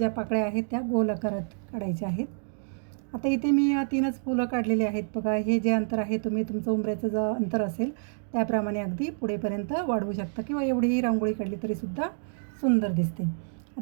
पाकळ्या आहेत त्या गोल आकारात काढायच्या आहेत. आता इथे मी 3च फुलं काढलेली आहेत. बघा, हे जे अंतर आहे तुम्ही तुमचं उंबऱ्याचं जे अंतर असेल त्याप्रमाणे अगदी पुढेपर्यंत वाढवू शकता किंवा एवढीही रांगोळी काढली तरीसुद्धा सुंदर दिसते.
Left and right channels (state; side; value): silent; left; digital silence